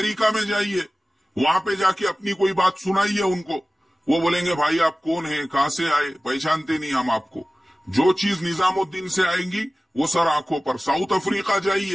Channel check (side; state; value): both; normal; correlation 0.97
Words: में जाइए, वहां पे जाके अपनी कोई बात सुनाइए उनको, वो बोलेंगे भाई आप कौन है, कहां से आए, पहचानते नहीं हम आपको। जो चीज निजामुद्दीन से आएंगी वो सर आंखों पर। साउथ अफ्रीका